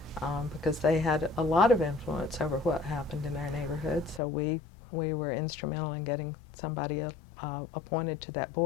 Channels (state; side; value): drops out; right; at 4.2 s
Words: because they had a lot of influence over what happened in our neighborhood. So we were instrumental in getting somebody appointed to that